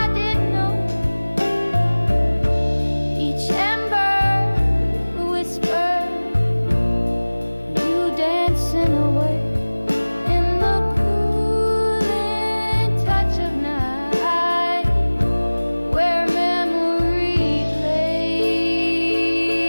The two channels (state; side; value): inverted; both; correlation -1.00